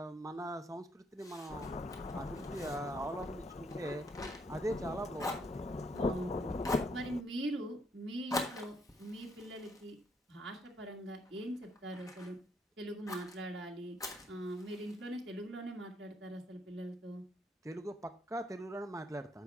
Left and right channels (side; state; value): both; normal; correlation 0.71